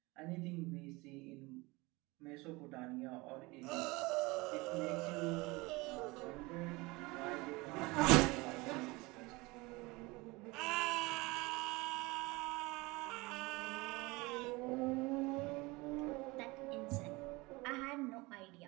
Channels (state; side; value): quieter; left; 23.6 dB